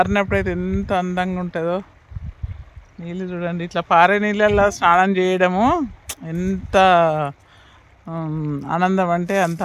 అయితే ఎంత అందంగా ఉంటుందో. నీళ్ళు చూడండి, ఇట్లా పారే నీళ్ళల్లో స్నానం చేయడము ఎంత ఆనందం అంటే అంత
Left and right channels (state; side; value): identical; both; correlation 1.00